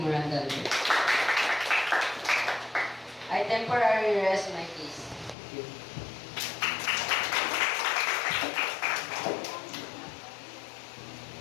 I temporarily rest my case. Thank you.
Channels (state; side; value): drops out; right; at 5.4 s